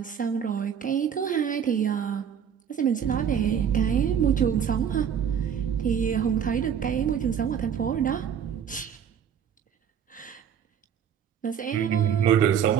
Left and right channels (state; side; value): quieter; left; 8.3 dB